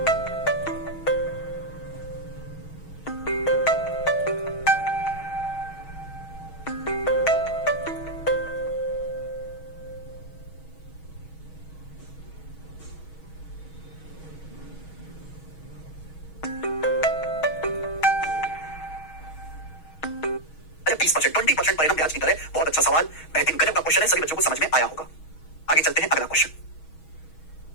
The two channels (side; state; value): right; late; 6.3 ms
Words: अच्छा 20%, 20% परिणाम ब्याज की दर है। बहुत अच्छा सवाल, बेहतरीन गजब का क्वेश्चन है, सभी बच्चों को समझ में आया होगा। आगे चलते हैं, अगला क्वेश्चन